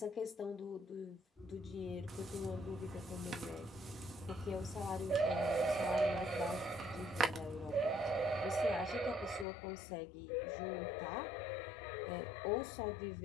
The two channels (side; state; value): right; drops out; at 9.5 s